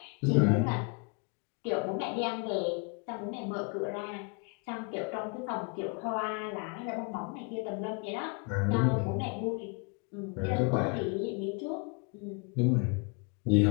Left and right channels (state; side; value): quieter; right; 34.6 dB